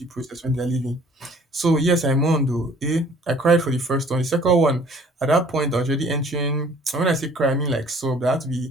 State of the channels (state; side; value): normal; both; correlation 0.54